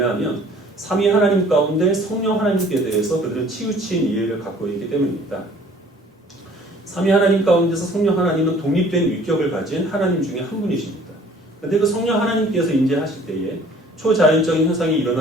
삼위 하나님 가운데 성령 하나님께 대해서 그들은 치우친 이해를 갖고 있기 때문입니다. 삼위 하나님 가운데서 성령 하나님은 독립된 위격을 가진 하나님 중에 한 분이십니다. 그런데 그 성령 하나님께서 임재하실 때에 초자연적인 현상이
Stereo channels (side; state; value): both; normal; correlation 0.53